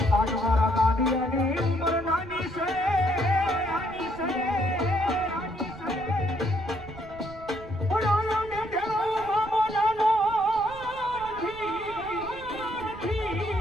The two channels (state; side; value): noise; right; rumble, 17 dB below the sound